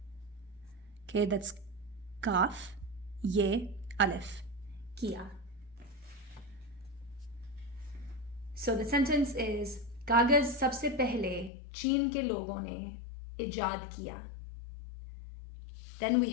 Okay, that's kaf, ye, alif, kia. So the sentence is, कागज सबसे पहले चीन के लोगों ने इजाद किया. Then we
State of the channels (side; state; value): right; drops out; at 11.5 s